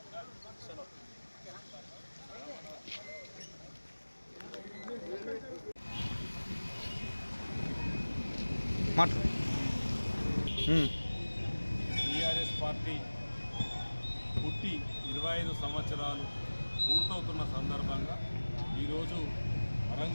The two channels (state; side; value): inverted; both; correlation -1.00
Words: TRS party పుట్టి 25 సంవత్సరాలు పూర్తవుతున్న సందర్భంగా ఈరోజు